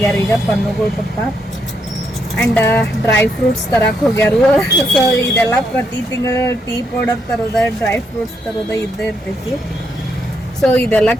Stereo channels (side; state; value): both; normal; correlation 0.78